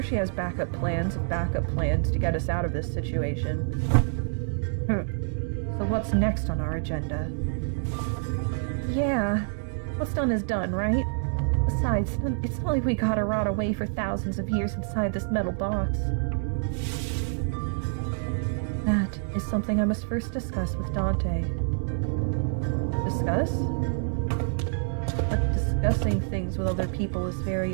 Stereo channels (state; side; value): silent; left; digital silence